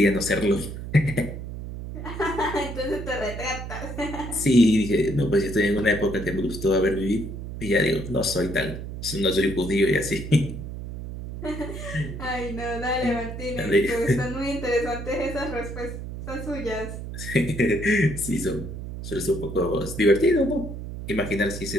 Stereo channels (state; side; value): noise; right; hum, 8 dB below the sound